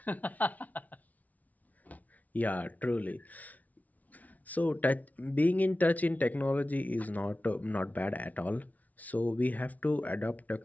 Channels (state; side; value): late; right; 0.073 ms